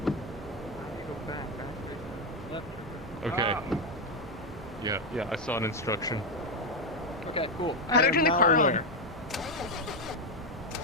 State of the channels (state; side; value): normal; both; correlation 0.07